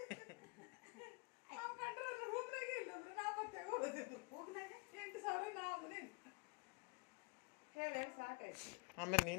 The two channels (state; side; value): quieter; right; 30.6 dB